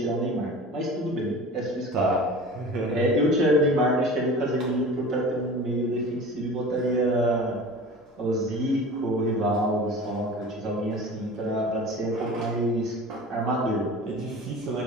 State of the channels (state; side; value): normal; both; correlation 0.38